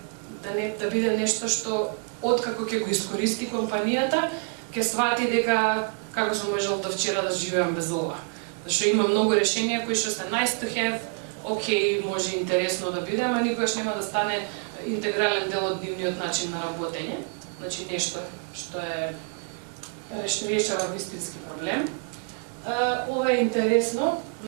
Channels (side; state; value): left; quieter; 37.9 dB